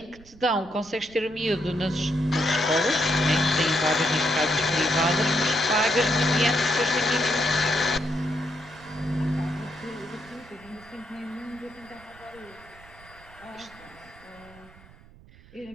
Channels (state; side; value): noise; right; rumble, 23 dB below the sound